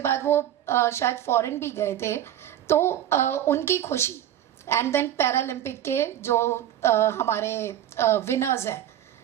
वो शायद फॉरेन भी गए थे, तो उनकी खुशी, एंड देन पैरालंपिक के जो हमारे विनर्स हैं,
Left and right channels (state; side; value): quieter; left; 11.5 dB